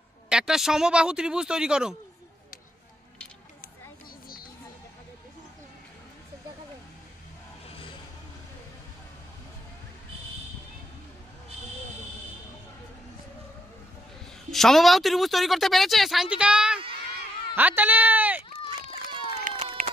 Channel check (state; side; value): normal; both; correlation 0.76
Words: একটা সমবাহু ত্রিভুজ তৈরি করো। সমবাহু ত্রিভুজ তৈরি করতে পেরেছে সায়ন্তিকা? হাততালি।